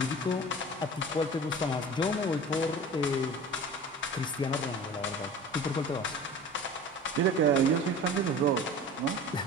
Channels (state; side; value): normal; both; correlation 0.38